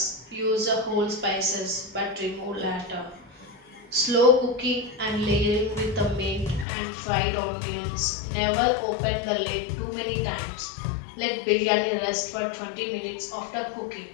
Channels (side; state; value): right; drops out; at 6.7 s